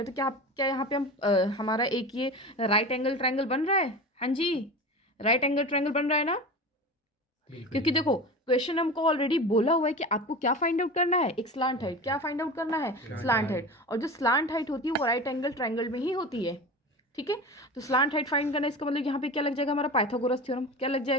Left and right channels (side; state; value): both; normal; correlation 0.30